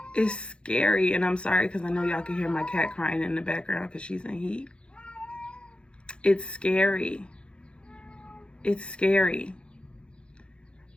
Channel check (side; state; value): right; late; 0.056 ms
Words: is scary. And I'm sorry because I know y'all can hear my cat crying in the background because she's in heat. It's scary. It's scary.